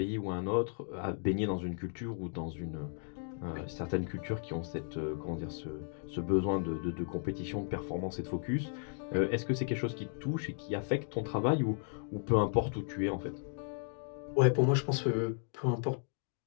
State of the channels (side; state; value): right; silent; 54 dB below the other